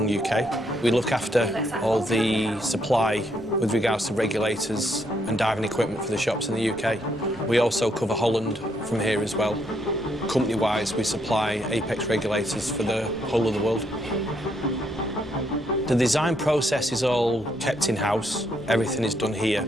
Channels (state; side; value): noise; right; rumble, 23 dB below the sound